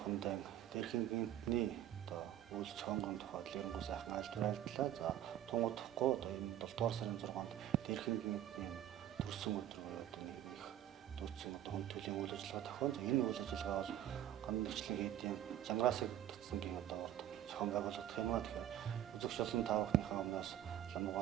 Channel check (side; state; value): left; quieter; 11.8 dB